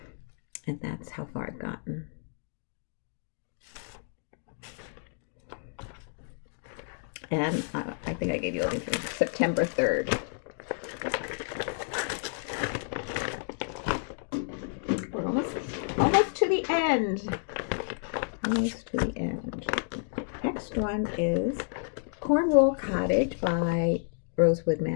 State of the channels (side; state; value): right; silent; digital silence